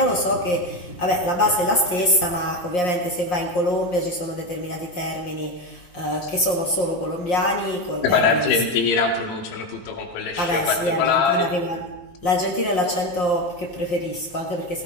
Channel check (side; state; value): right; late; 5.6 ms